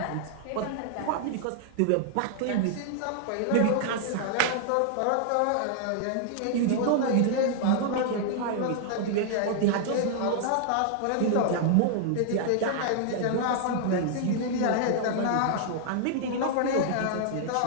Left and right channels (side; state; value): both; different; correlation -0.01